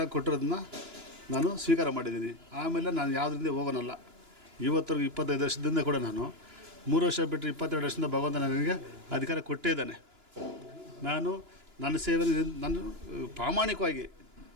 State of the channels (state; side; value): late; left; 2.9 ms